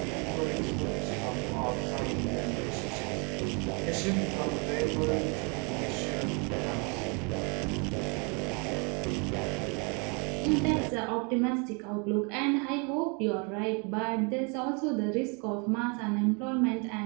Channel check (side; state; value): left; quieter; 34.1 dB